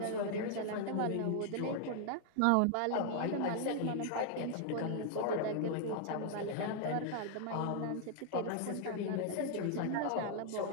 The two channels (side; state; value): both; different; correlation 0.00